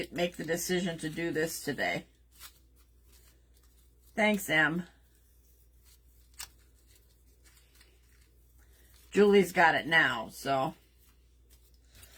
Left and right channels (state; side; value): identical; both; correlation 1.00